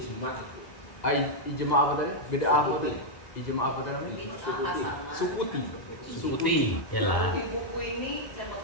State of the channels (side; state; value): right; late; 1.0 ms